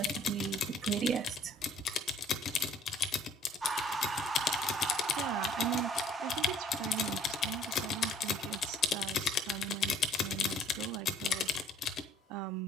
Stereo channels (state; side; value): normal; both; correlation 0.56